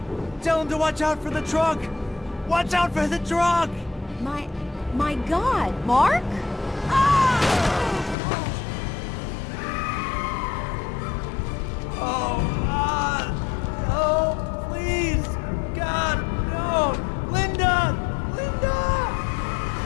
Tell him to watch out for the truck! Watch out for the truck! My God, Mark? Oh, please! God, no! Linda! Linda!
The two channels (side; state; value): right; drops out; at 8.2 s